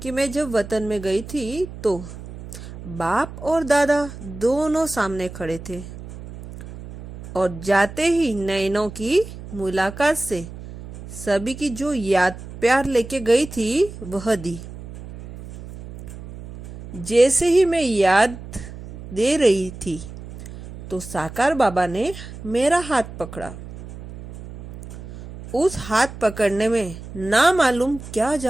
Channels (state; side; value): noise; right; hum, 13 dB below the sound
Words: कि मैं जब वतन में गई थी तो बाप और दादा दोनों सामने खड़े थे और जाते ही नैनों की मुलाकात से सभी की जो याद प्यार लेके गई थी वह दी। जैसे ही मैं याद दे रही थी तो साकार बाबा ने मेरा हाथ पकड़ा। उस हाथ पकड़ने में ना मालूम क्या